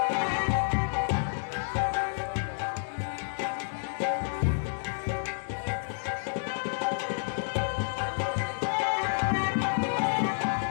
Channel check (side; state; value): right; silent; digital silence